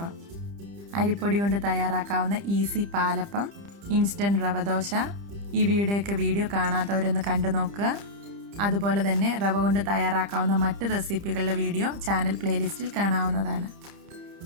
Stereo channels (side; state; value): left; late; 30 ms